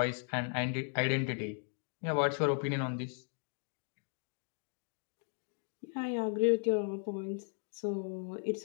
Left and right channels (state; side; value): silent; right; 53 dB below the other